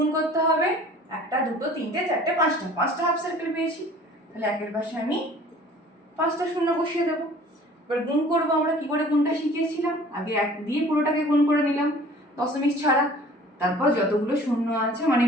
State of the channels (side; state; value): both; normal; correlation 0.49